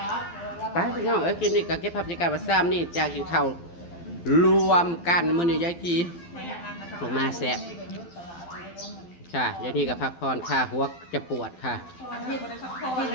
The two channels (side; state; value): right; late; 12 ms